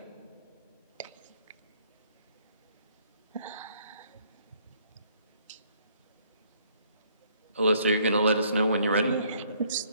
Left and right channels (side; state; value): both; inverted; correlation -0.64